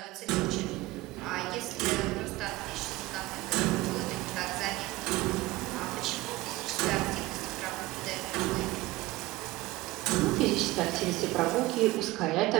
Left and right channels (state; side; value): quieter; left; 19.3 dB